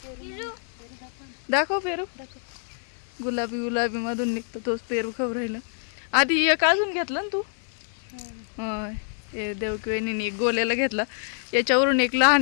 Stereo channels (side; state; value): right; silent; 58 dB below the other